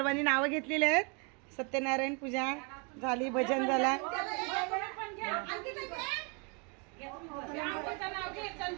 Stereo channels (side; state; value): left; quieter; 34.5 dB